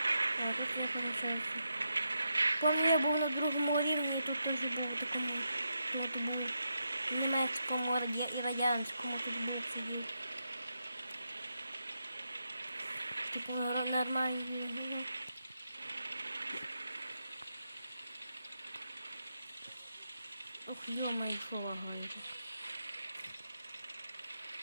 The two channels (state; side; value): inverted; both; correlation -0.84